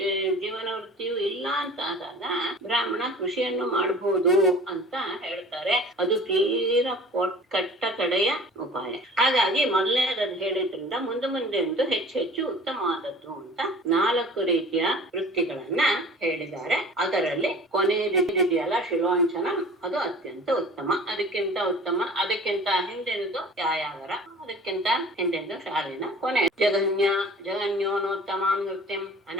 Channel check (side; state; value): both; normal; correlation 0.44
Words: ವೃತ್ತಿಯೂ ಇಲ್ಲ ಅಂತ ಆದಾಗ ಬ್ರಾಹ್ಮಣ ಕೃಷಿಯನ್ನು ಮಾಡಬಹುದು ಅಂತ ಹೇಳ್ತಾರೆ. ಅದು ತೀರಾ ಕಟ್ಟ ಕಡೆಯ ಉಪಾಯ. ಹಾಗಾಗಿ ಮೊದಲನೇದು ಹೇಳಿದ್ರಿಂದ ಮುಂದೆ ಹೆಚ್ಚು ಉತ್ತಮವಾದದ್ದು ಅಂತ 4 ರೀತಿಯ ವೃತ್ತಿಗಳನ್ನ ಹೇಳಿದ್ದಾರೆ. ಅದರಲ್ಲಿ ಕೊನೆಯದಿದೆಯಲ್ಲ ಶಿಲೋಂಚನ, ಅದು ಅತ್ಯಂತ ಉತ್ತಮ. ಅದಕ್ಕಿಂತ ಹಿಂದಿನದು ಯಾಯಾವರ, ಅದಕ್ಕಿಂತ ಹಿಂದೆಂದು ಶಾಲಿನ, ಕೊನೆ ಜಗನ್ಯೋನೋತ್ತಮಾಂ ನೃತ್ಯಂ